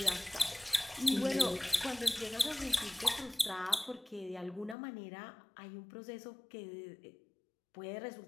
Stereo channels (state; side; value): drops out; right; at 4.8 s